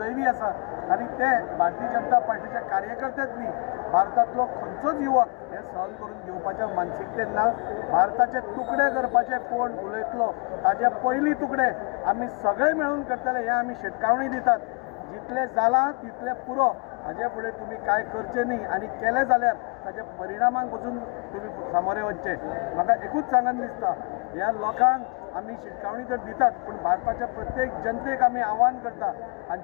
आसा। आनी ते भारतीय जनता पार्टीचे कार्यकर्तेच न्ही, भारतांतलो खंयचोच युवक हे सहन करून घेवपाच्या मानसिकतेन ना। भारताचे तुकडे करपाचे कोण उलयतलो ताजे पयलीं तुकडे आमी सगळे मेळून करतले हे आमी शिटकावणी दितात। जितले जाला तितले पुरो, हाजे फुडें तुमी कांय करचें न्ही, आनी केलें जाल्यार ताच्या परिणामांक पसून तुमी सामोरे वचचे। म्हाका एकूच सांगन दिसता, ह्या लोकांक आमी शिटकावणी तर दितात, पूण भारताच्या प्रत्येक जनतेक आमी आव्हान करता,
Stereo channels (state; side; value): quieter; right; 34.2 dB